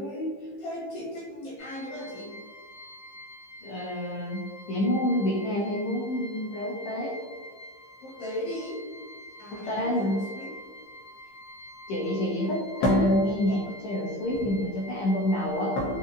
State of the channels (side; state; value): right; late; 15 ms